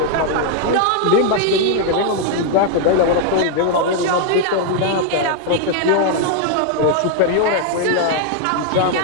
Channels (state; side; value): different; both; correlation 0.00